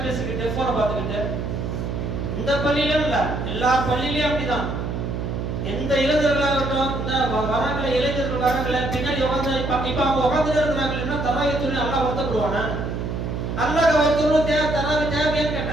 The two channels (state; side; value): noise; right; hum, 3 dB below the sound